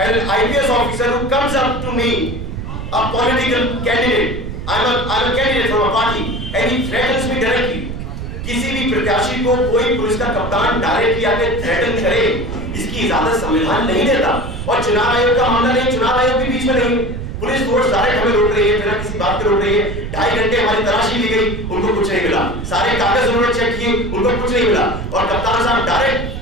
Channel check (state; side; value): noise; right; rumble, 7 dB below the sound